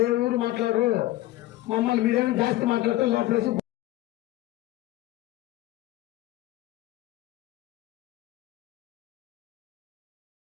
ఏ ఊరు మాట్లాడరు, మమ్మల్ని మీరేమో జాస్తి మాట్లాడతారు లోపలేసి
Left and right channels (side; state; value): right; quieter; 16.2 dB